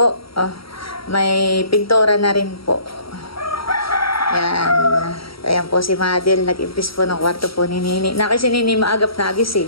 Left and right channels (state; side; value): late; right; 0.75 ms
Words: Oh, may pintura na rin po. Ayan. Ayan po si Madel. Nag-impis po ng kwarto po ni Nini. Na kasi Nini maagap na